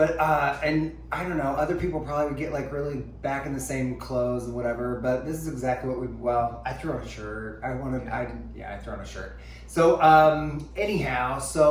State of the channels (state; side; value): identical; both; correlation 1.00